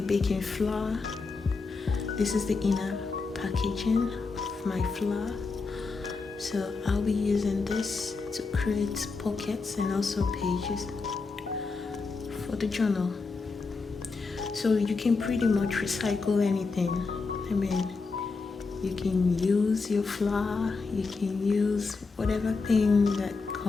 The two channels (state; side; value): quieter; right; 4.3 dB